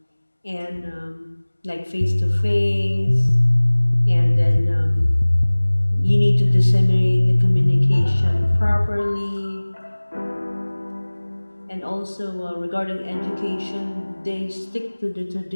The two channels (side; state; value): both; inverted; correlation -1.00